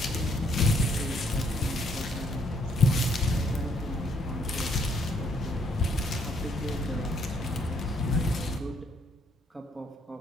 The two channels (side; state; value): both; normal; correlation 0.69